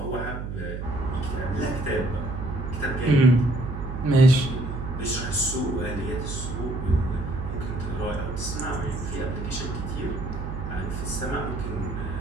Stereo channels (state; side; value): noise; right; hum, 6 dB below the sound